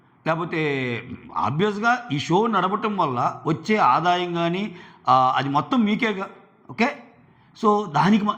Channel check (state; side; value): identical; both; correlation 1.00